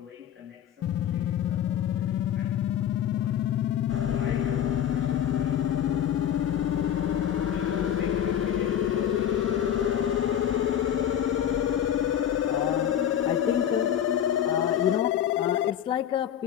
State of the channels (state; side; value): quieter; right; 10.1 dB